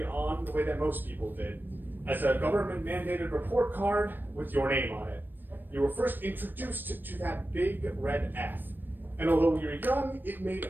on, the way that most people did, as a government-mandated report card with your name on it. You were first introduced to that big red F. And although you were young, it made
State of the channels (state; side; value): late; left; 0.093 ms